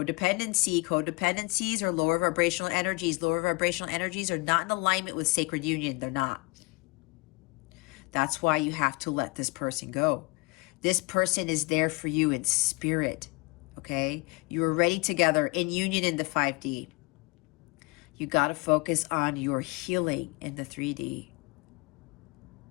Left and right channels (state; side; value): quieter; right; 26.2 dB